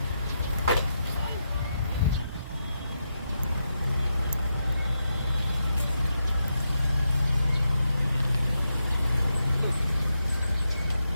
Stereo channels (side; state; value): both; inverted; correlation -0.84